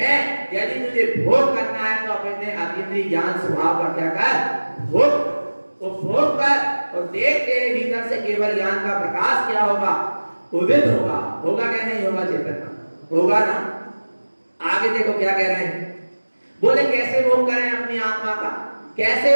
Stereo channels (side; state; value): both; inverted; correlation -1.00